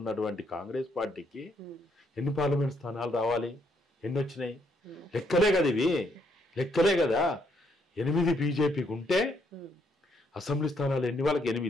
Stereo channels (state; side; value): normal; both; correlation 0.73